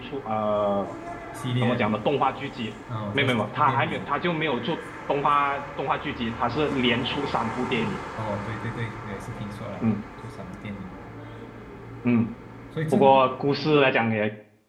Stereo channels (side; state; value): both; identical; correlation 1.00